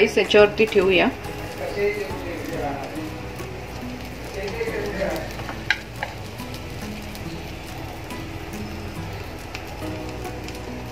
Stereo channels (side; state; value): both; identical; correlation 1.00